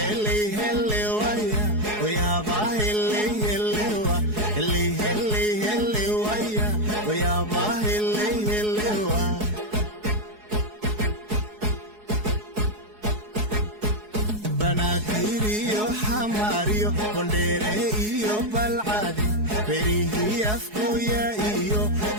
hele waya, oya ba hele hele wa. Hele hele hele waya, oya ba hele hele wa. Banaadir iyo xamaar iyo Boondheere iyo Balcad berihi afkooya iyo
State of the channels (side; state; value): left; late; 4.7 ms